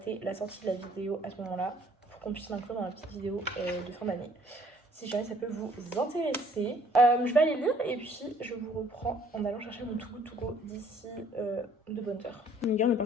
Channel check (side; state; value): both; normal; correlation 0.60